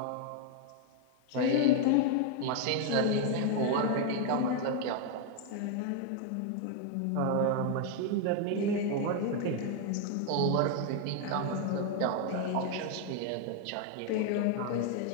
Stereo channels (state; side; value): different; both; correlation 0.00